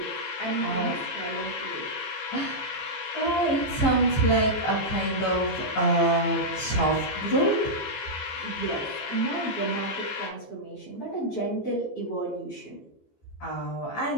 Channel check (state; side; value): late; right; 15 ms